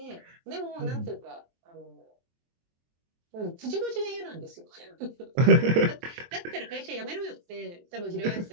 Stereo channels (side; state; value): left; late; 23 ms